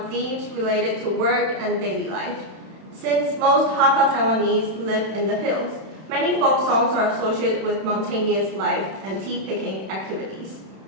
themes related to work and daily life. Since most Hakka Taiwanese live in the hills, many folk songs are associated with mountainous life and tea-picking activities.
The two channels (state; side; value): late; left; 31 ms